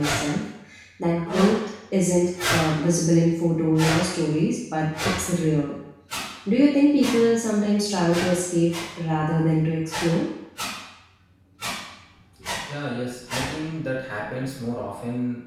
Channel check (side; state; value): both; identical; correlation 1.00